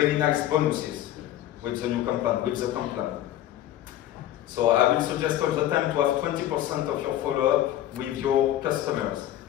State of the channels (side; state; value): right; quieter; 12.9 dB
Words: nice bonuses with the new complaint, with the complaint. So I will suggest all the time to have 20% of your follow-up with your customers.